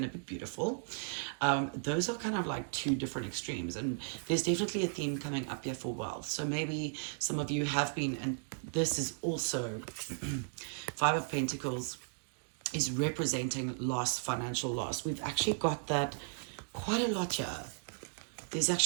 to be beautiful. Those are kind of like two different extremes, and there's definitely a theme coming up here for wealth. So maybe some of you have been, and this is also Five of Pentacles is representing loss, financial loss. We've actually got that quite a lot here.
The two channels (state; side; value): silent; left; digital silence